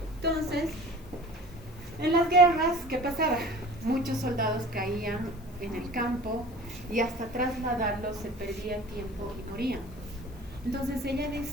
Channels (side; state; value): left; noise; hiss, 27 dB below the sound